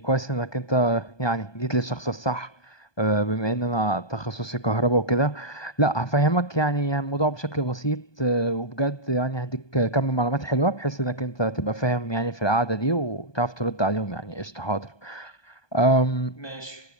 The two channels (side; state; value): right; late; 1.2 ms